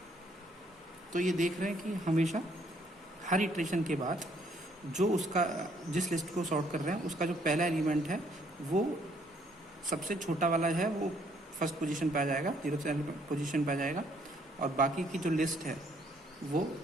तो ये देख रहे हैं कि हमेशा हर इटरेशन के बाद जो उसका जिस लिस्ट को सॉर्ट कर रहे हैं उसका जो पहला एलिमेंट है वो सबसे छोटा वाला है वो फर्स्ट पोजीशन पे आ जाएगा, जीरोथ पोजीशन पे आ जाएगा। और बाकी की जो लिस्ट है वो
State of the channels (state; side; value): normal; both; correlation 0.66